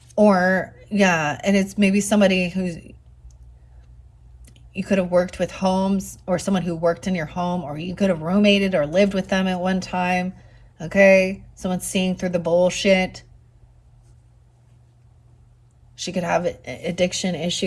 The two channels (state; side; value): identical; both; correlation 1.00